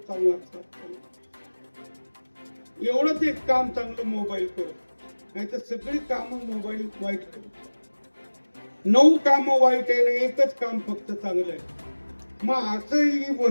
संवाद साधतो. एवढंच एक काम चांगलं मोबाईल करतो, नाही तर सगळी कामं मोबाईल वाईट करतो. 9 कामं वाईट आहे ना, एकच काम फक्त चांगलं आहे. मग असं ही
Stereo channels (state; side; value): inverted; both; correlation -1.00